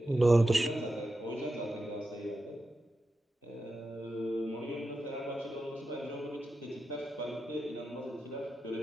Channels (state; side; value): normal; both; correlation 0.90